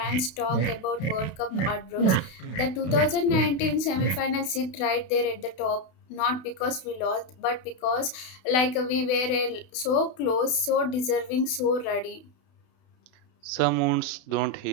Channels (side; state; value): right; late; 32 ms